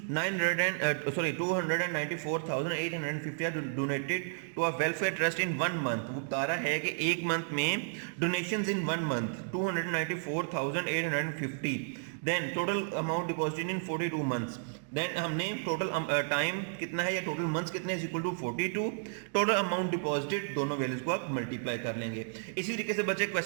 are donated to a welfare trust in 1 month। वो बता रहा है कि एक मंथ में donations in 1 month 294,850, then total amount deposited in 42 months, then हमने टोटल टाइम कितना है या टोटल मंथ्स कितने is equal to 42, total amount deposited, दोनों वैल्यूज को आप मल्टीप्लाई कर लेंगे। इसी तरीके से बच्चे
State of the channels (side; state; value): left; silent; digital silence